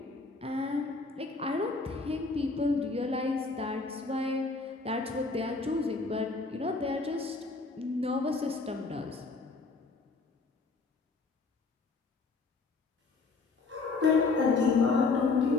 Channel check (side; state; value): right; quieter; 4.0 dB